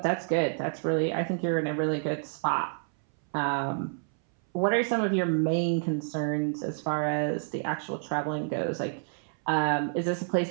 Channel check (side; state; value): left; silent; 59 dB below the other